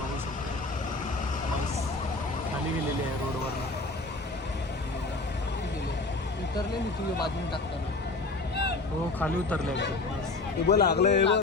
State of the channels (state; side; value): quieter; right; 3.2 dB